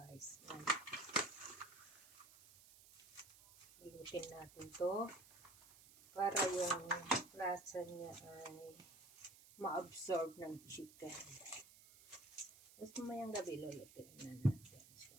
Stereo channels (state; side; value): noise; right; hiss, 21 dB below the sound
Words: Ilutin natin to para yung lasa niya ay ma-absorb ng chicken. Tapos mamayang gabi lulutin na natin siya.